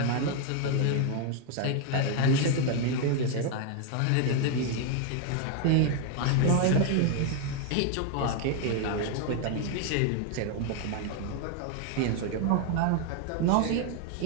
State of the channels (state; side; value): different; both; correlation 0.00